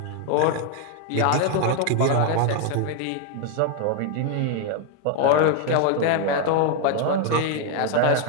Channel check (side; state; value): both; different; correlation 0.01